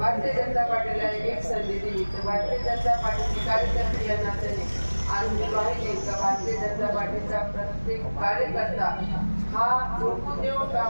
जनता पार्टीला एक संधी दिली तर भारतीय जनता पार्टीची कार्यकर्ते या नात्याने आज मी पाहिले का भारतीय जनता पार्टीचा प्रत्येक कार्यकर्ता हा झोपून देऊन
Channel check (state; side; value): inverted; both; correlation -1.00